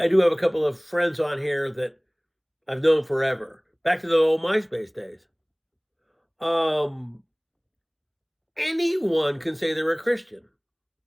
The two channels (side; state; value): both; identical; correlation 1.00